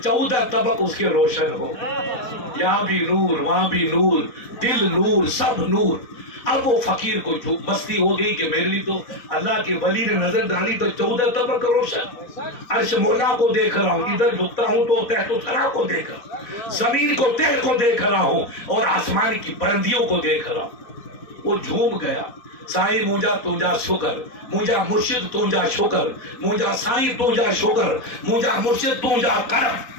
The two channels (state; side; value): late; right; 4.1 ms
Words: 14 طبق اس کے روشن ہو. یہاں بھی نور، وہاں بھی نور، دل نور، سب نور. اب وہ فقیر کو مستی ہو گئی کہ میرے لیے تو اللہ کے ولی نے نظر ڈالی تو 14 طبق روشن. عرش مولا کو دیکھ رہا ہوں، ادھر جھکتا ہوں تو تحت و ثری کو دیکھ رہا ہوں، زمین کو تہ کو دیکھ رہا ہوں اور آسمان کی بلندیوں کو دیکھ رہا ہوں. وہ جھوم گیا. سائیں مجھا تجھا شکر، مجھا مرشد تجھا شکر، مجھا سائیں تجھا شکر، مجھا مرشد تجھا کرم.